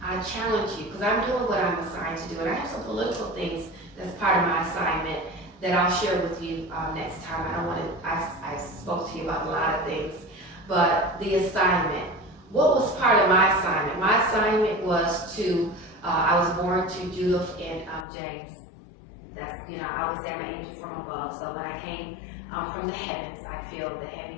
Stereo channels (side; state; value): right; drops out; at 18.1 s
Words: I challenge you, because I'm doing what I'm assigned to do, and I have some political things that's part of my assignment that I'll share with you next time. I don't want to, I spoke to you about a lot of things, but the assignment. What was part of my assignment? My assignment was to, I was born to Judith and James. That's, you know, I was an angel from above, so when I came from the heavens, I feel the